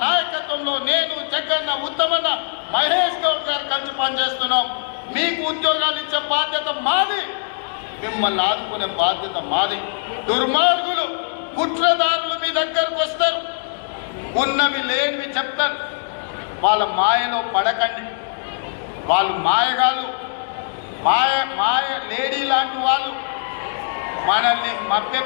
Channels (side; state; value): right; silent; digital silence